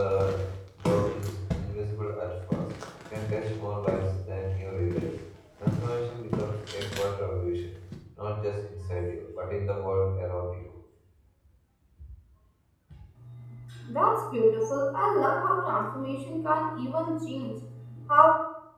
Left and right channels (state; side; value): identical; both; correlation 1.00